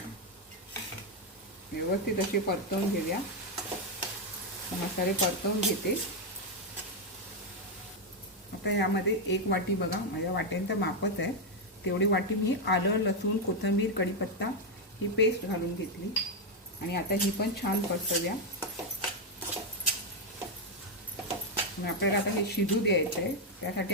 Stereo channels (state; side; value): normal; both; correlation 0.03